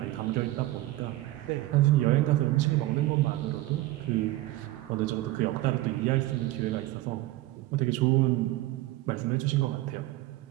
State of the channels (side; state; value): left; quieter; 17.1 dB